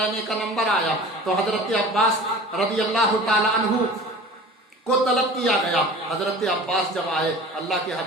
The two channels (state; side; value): normal; both; correlation 0.40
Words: का नंबर आया तो हजरत अब्बास रज़ी अल्लाह ताला अन्हु کو طلب کیا گیا۔ حضرت عباس جب آئے، اللہ کے